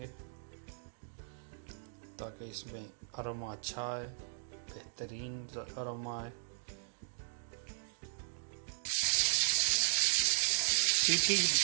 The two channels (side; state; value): left; silent; digital silence